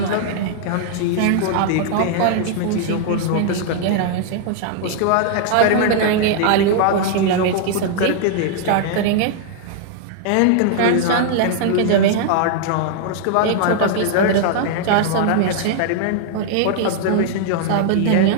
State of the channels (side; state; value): both; different; correlation -0.01